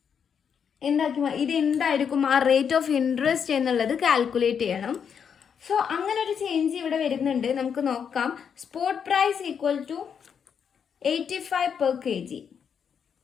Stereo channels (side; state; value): right; quieter; 7.3 dB